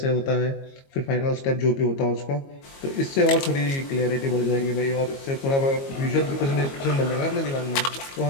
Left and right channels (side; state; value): right; late; 22 ms